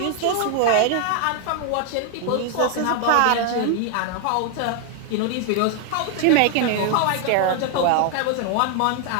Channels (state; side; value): different; both; correlation 0.00